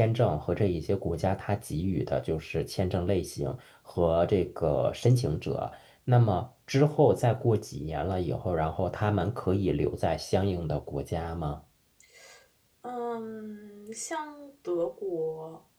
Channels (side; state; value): both; identical; correlation 1.00